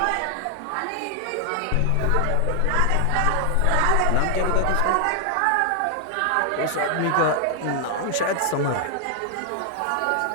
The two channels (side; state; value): both; different; correlation 0.00